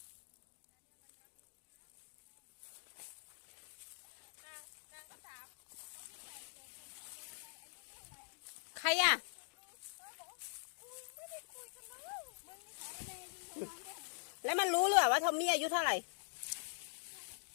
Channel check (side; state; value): right; silent; digital silence